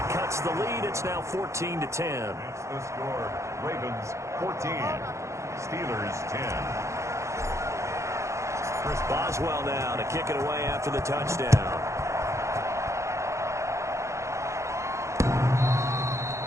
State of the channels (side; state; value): left; late; 0.14 ms